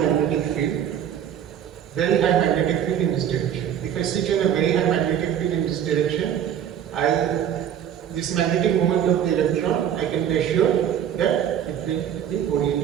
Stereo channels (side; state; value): left; quieter; 9.6 dB